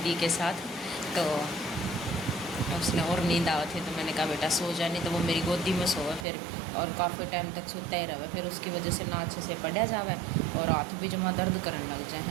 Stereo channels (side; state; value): left; drops out; at 6.2 s